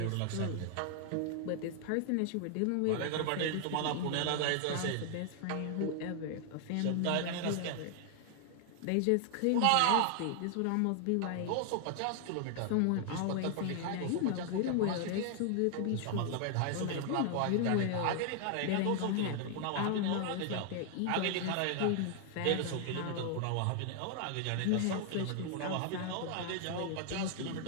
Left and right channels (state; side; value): different; both; correlation 0.00